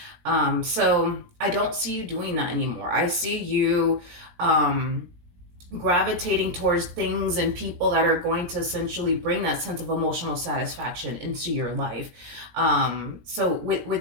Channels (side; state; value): left; late; 17 ms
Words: So I don't see you doing that anymore. I see you gravitating towards things and people that are going to essentially bring that sense of emotional satisfaction into your life. So